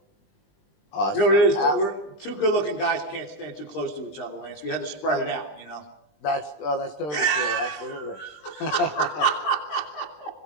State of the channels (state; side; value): late; right; 20 ms